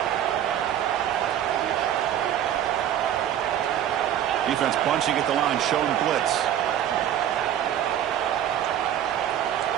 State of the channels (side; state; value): left; quieter; 10.7 dB